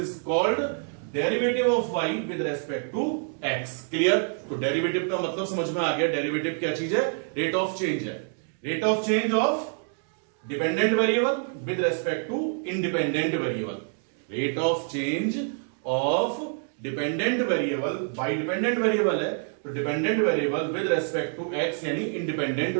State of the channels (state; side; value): silent; left; 55 dB below the other